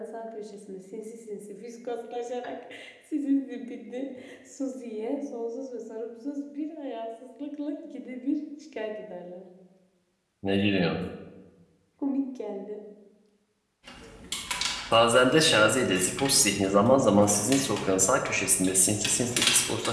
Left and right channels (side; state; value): both; identical; correlation 1.00